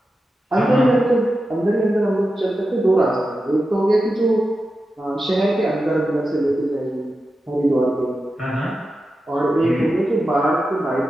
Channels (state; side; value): normal; both; correlation 0.91